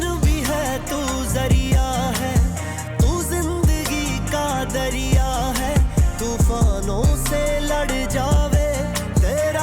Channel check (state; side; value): identical; both; correlation 1.00